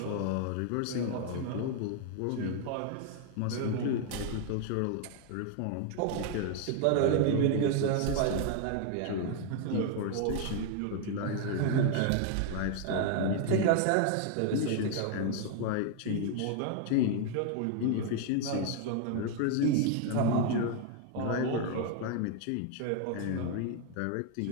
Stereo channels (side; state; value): both; different; correlation 0.00